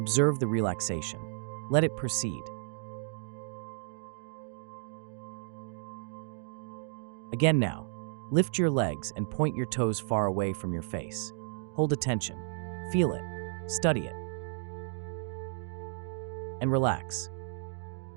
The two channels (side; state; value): left; silent; digital silence